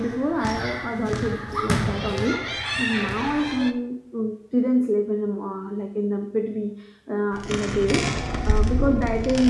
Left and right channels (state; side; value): identical; both; correlation 1.00